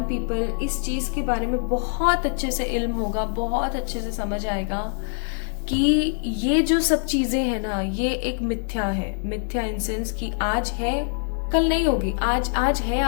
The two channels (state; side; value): silent; right; 62 dB below the other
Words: पीपल इस चीज के बारे में बहुत अच्छे से इल्म होगा, बहुत अच्छे से समझ आएगा कि ये जो सब चीजें हैं ना, ये एक मिथ्या है। मिथ्या इन सेंस कि आज है कल नहीं होगी, आज है